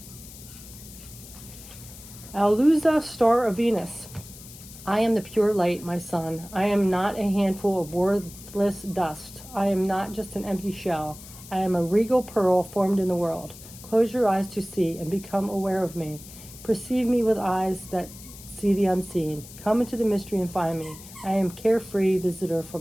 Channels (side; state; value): left; noise; hiss, 17 dB below the sound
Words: Alusa, star of Venus. I am the pure light, my son. I am not a handful of worthless dust. I am not just an empty shell. I am a regal pearl formed in the world. Close your eyes to see and become aware of me. Perceive me with eyes that see the unseen. Come into the mystery and find me. I am carefree visitor